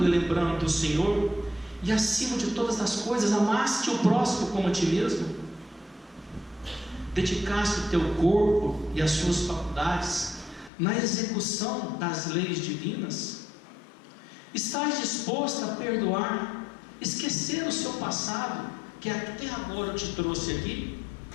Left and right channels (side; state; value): right; drops out; at 10.7 s